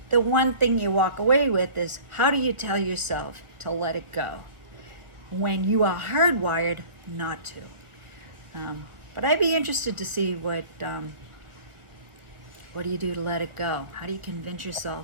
the one thing you walk away with is, how do you tell yourself to let it go when you are hardwired not to? But I'd be interested to see what do you do to let it go? How do you convince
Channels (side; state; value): left; late; 1.4 ms